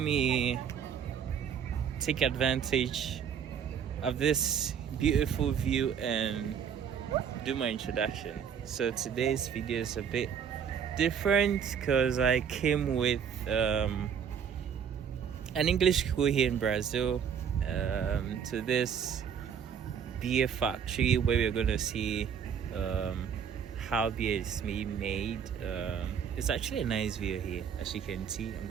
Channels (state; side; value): quieter; left; 7.7 dB